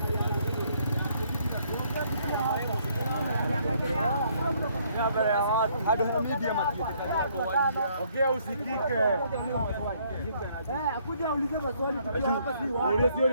Hadi na media matiete. Ongea usikike. Akuja ulize maswali tukiwa hapa si wao. Ule sio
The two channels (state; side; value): inverted; both; correlation -0.66